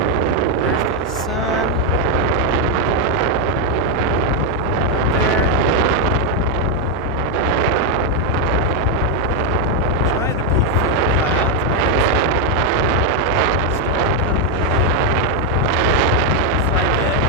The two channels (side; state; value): both; normal; correlation 0.02